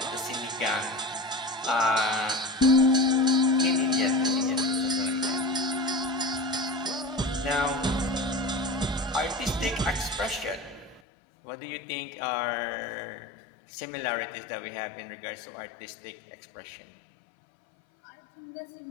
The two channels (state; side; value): drops out; right; at 11.0 s